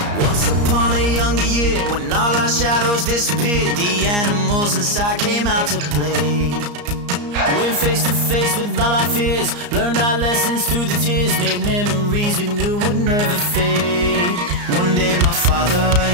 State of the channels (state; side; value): late; left; 34 ms